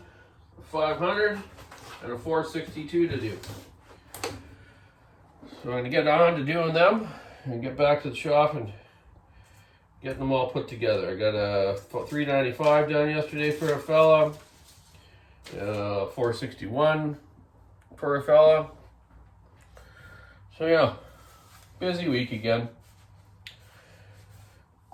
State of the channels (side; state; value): both; identical; correlation 1.00